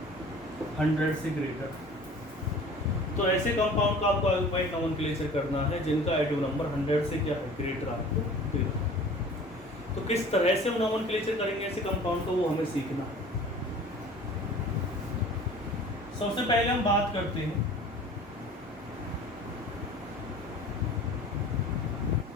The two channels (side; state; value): both; normal; correlation 0.45